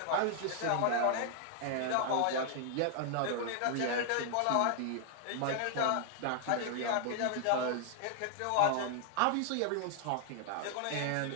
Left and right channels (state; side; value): different; both; correlation 0.00